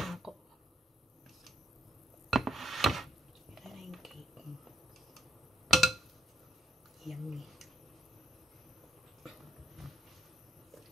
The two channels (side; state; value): both; normal; correlation 0.68